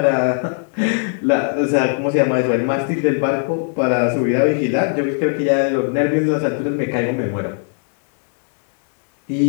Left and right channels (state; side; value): silent; right; 58 dB below the other